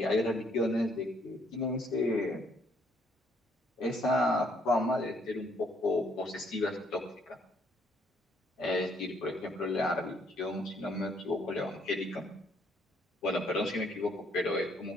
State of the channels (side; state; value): both; normal; correlation 0.68